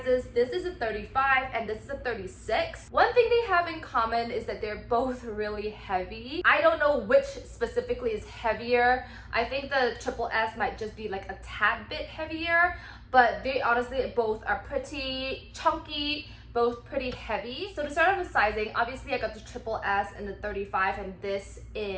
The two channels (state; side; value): identical; both; correlation 1.00